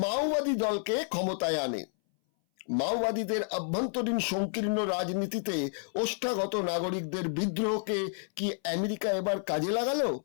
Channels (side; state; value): right; silent; 58 dB below the other